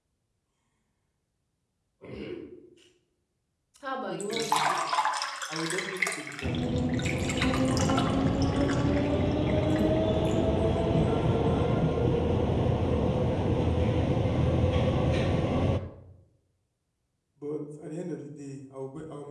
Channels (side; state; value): both; identical; correlation 1.00